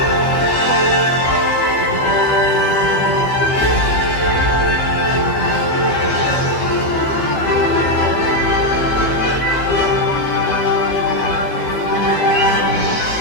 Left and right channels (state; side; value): late; right; 15 ms